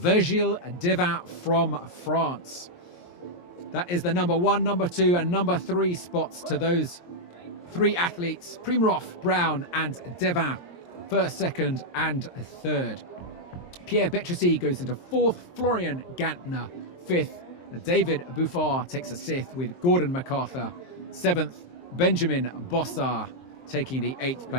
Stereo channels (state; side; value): late; right; 23 ms